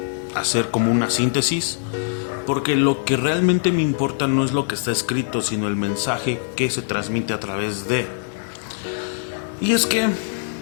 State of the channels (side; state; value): right; silent; digital silence